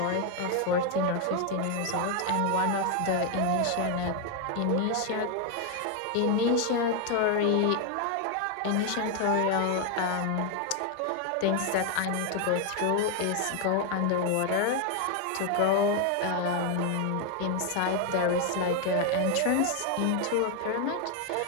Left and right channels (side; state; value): both; different; correlation 0.01